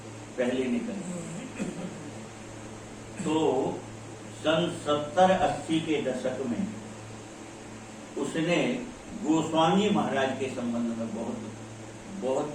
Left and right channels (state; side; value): identical; both; correlation 1.00